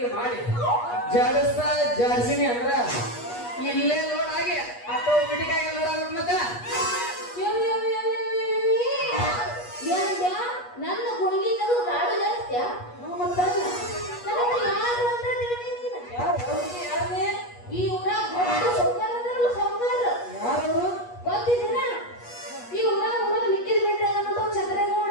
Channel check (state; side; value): late; right; 8.3 ms